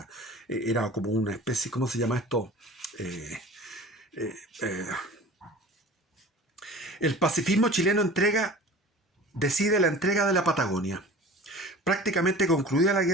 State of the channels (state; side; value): normal; both; correlation 0.40